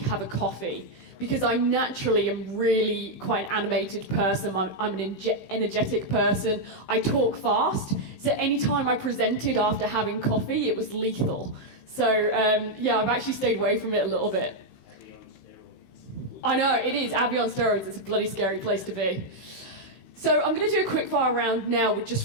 a coffee. Because I naturally am really quite an animated person, I'm an energetic person, I talk fast, so anytime I presented after having coffee, it was lethal. So yeah, I've actually stayed away from it a little bit. Abbie on steroids. I know, it is, Abbie on steroids, it's a bloody scary place to be. So I'm going to do a quick fire round now with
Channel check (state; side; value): late; right; 15 ms